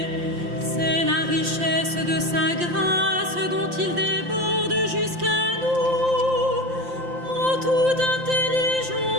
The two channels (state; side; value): late; left; 5.7 ms